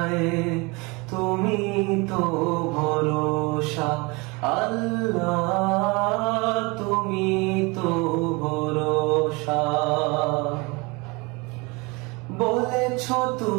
তুমি তো ভরসা। আল্লাহ তুমি তো ভরসা। বলেছ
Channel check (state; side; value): quieter; left; 26.9 dB